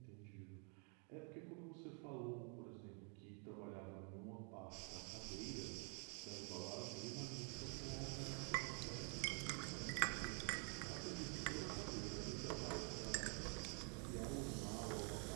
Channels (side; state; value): left; quieter; 38.3 dB